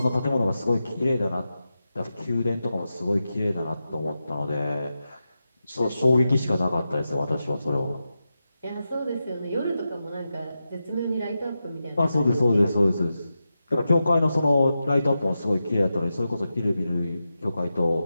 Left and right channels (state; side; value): inverted; both; correlation -0.90